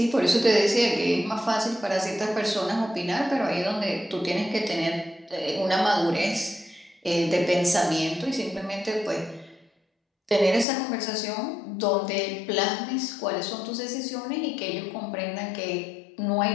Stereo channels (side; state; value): right; drops out; at 10.7 s